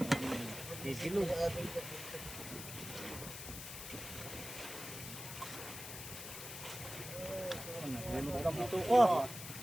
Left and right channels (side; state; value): left; noise; hiss, 9 dB below the sound